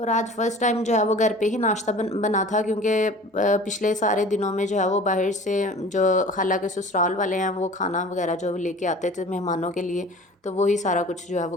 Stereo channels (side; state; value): both; normal; correlation 0.43